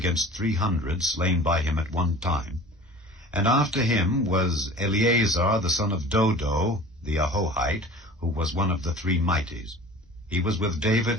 300 slain by him at one time. And after him was Eleazar the son of Dodo, the Ahohite, who was one of the 3 mighties. He was with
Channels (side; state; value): both; normal; correlation 0.42